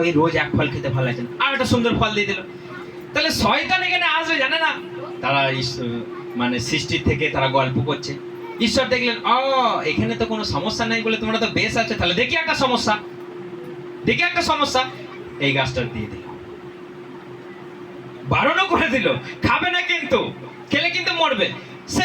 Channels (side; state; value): both; identical; correlation 1.00